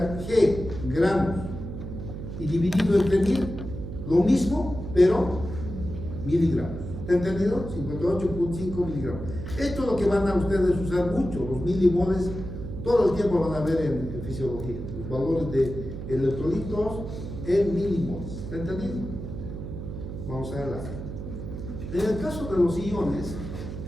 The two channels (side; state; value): right; noise; hum, 8 dB below the sound